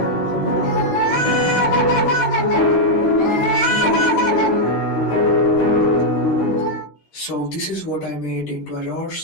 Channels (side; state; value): right; late; 13 ms